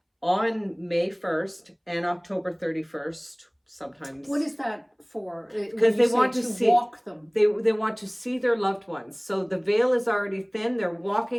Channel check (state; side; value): identical; both; correlation 1.00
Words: On May 1st and October 31st, sometimes. What is that for? Because they want to walk them. They want to see their loved ones. So the veil is already thin. They're